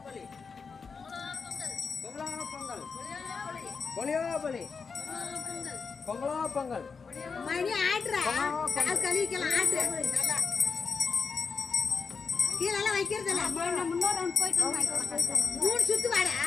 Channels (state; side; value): quieter; right; 5.3 dB